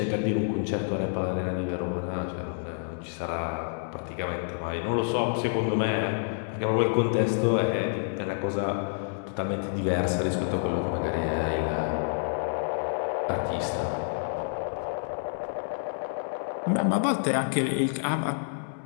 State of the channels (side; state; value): right; silent; 59 dB below the other